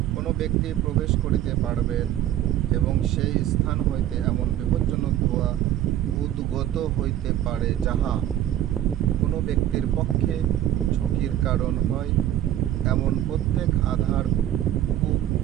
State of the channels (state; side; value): quieter; left; 12.3 dB